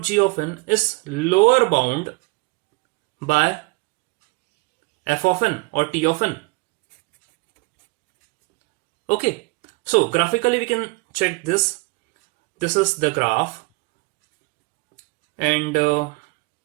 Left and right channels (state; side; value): quieter; left; 27.6 dB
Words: g of n is lower bound by f of n or t of n. Okay, so graphically we can check this. This is the graph, and